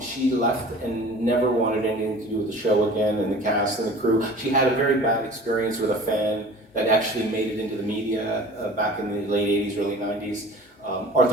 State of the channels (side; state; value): both; normal; correlation 0.43